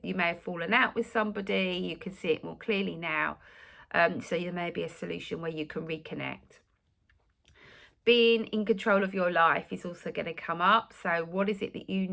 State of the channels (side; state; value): both; identical; correlation 1.00